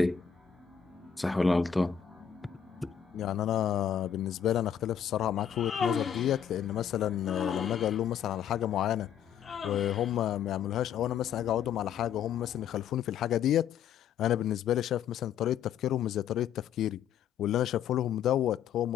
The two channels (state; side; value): quieter; right; 8.7 dB